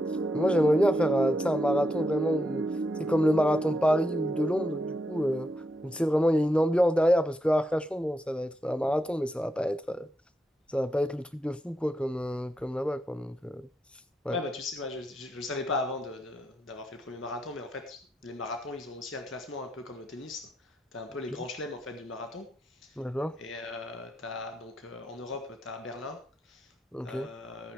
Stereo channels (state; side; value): normal; both; correlation 0.82